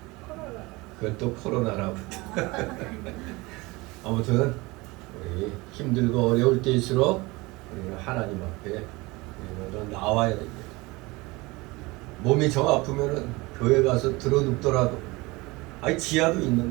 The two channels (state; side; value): quieter; left; 23.1 dB